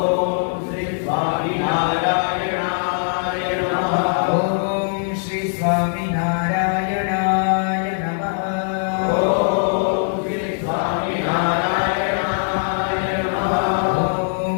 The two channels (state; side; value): silent; right; digital silence